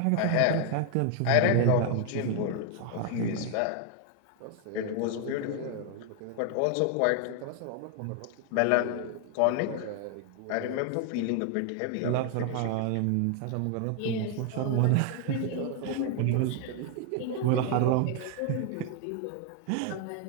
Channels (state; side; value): different; both; correlation 0.00